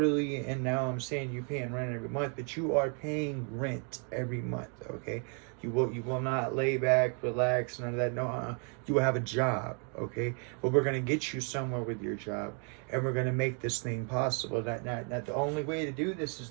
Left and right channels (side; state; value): left; quieter; 39.9 dB